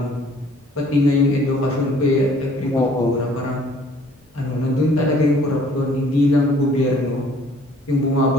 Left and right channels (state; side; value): normal; both; correlation 0.57